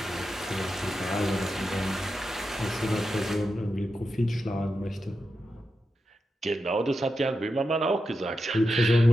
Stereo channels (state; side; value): normal; both; correlation 0.88